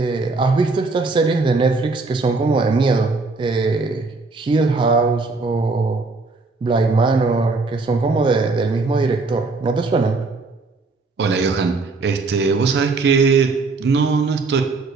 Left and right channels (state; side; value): quieter; left; 3.8 dB